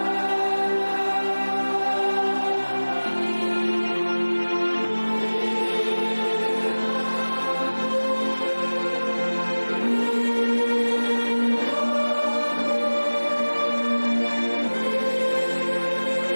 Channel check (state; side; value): inverted; both; correlation -1.00